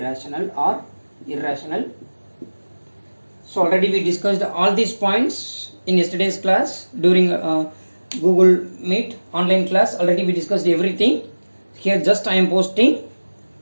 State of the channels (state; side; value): inverted; both; correlation -1.00